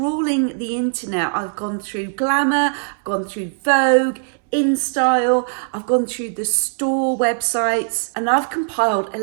the internet. I've gone through Glamour, I've gone through Vogue, InStyle, I've gone through the store websites, and I've compiled a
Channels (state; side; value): silent; left; 66 dB below the other